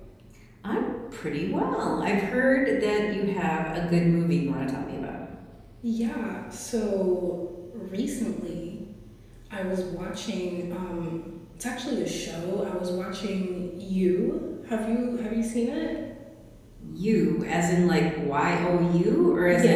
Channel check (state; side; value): identical; both; correlation 1.00